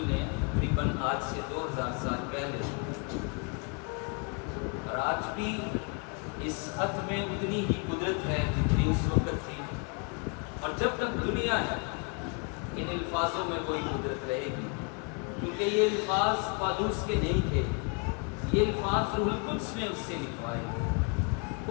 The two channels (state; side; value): quieter; right; 35.0 dB